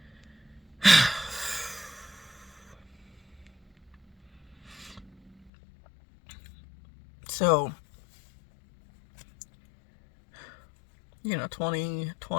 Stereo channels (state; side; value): drops out; right; at 5.5 s